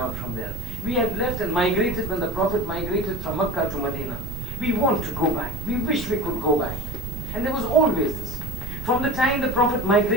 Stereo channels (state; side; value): noise; right; rumble, 7 dB below the sound